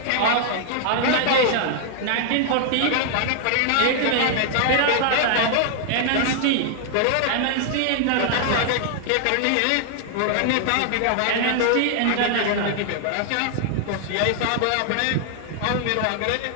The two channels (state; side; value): different; both; correlation 0.00